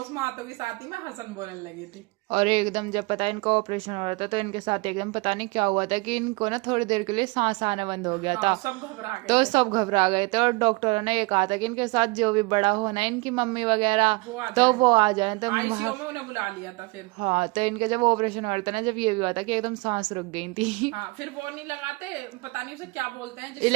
में आतों के साथ ही मैं हंसन बोलने लगी थी। और एकदम जब पता इनका ऑपरेशन हो रहा था तो इनके साथ एकदम पता नहीं क्या हुआ था कि इनको ना थोड़ी देर के लिए सांस आना बंद हो गया था। सब घबरा गए तो सब घबरा गए थे और डॉक्टरों ने ये कहा था कि इनके साथ जो भी बड़ा होना है, इनकी मम्मी वगैरह, तो वो आ जाए। तो आईसीयू में उन्हें बुला लिया था फिर। हाँ, तो इनका जब ऑपरेशन हो रहा था ना, जब ये भी हुआ था कि एकदम सांस रुक गई थी। हाँ, फिर वो नहीं लगाते, पता नहीं उसे क्या बोलते हैं,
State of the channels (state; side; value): quieter; left; 25.9 dB